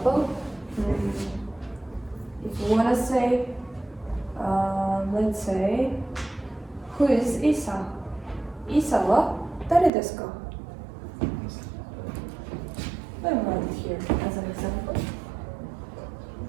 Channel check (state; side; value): drops out; left; at 9.9 s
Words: if you want to say, let's say, who is Isa? Isa wa dare desu ka? Let me write it here as an example.